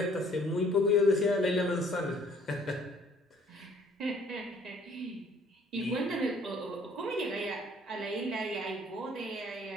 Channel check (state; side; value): normal; both; correlation 0.58